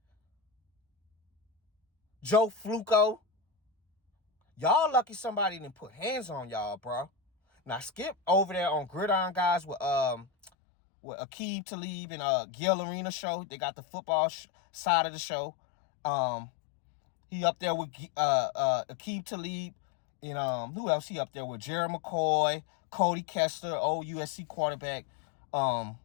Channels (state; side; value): drops out; right; at 10.5 s